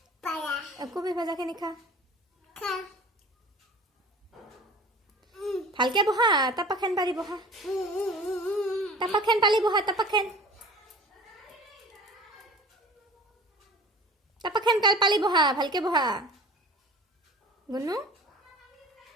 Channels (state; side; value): normal; both; correlation 0.42